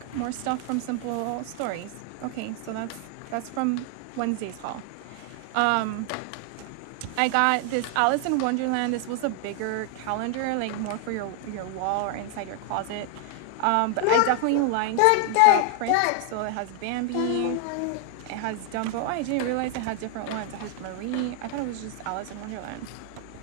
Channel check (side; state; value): both; different; correlation 0.00